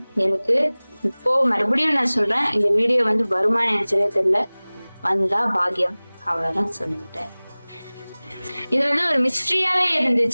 எனக்கு இப்போ மறுபடியும் நான் சொல்றேன், இந்த வீடியோ வந்து வருமானு நினைச்சதே தெரியல, வந்தா பாக்கியம், அவ்வளவுதான் சொல்லிட்டேன். இது வந்து ஒரு மிஸ்ட்ரியாவே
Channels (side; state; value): both; inverted; correlation -1.00